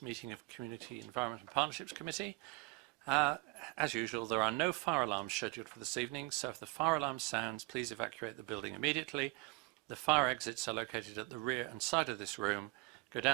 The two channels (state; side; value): quieter; left; 25.1 dB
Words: meeting of Community Environment and Partnerships Committee. As usual, there are no fire alarms scheduled for this evening, so if the fire alarm sounds, please evacuate the building immediately. The fire exits are located at the rear and side of this room. Go